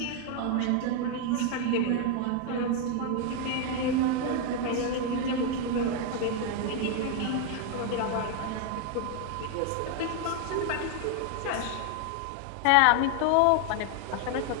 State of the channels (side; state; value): both; different; correlation 0.01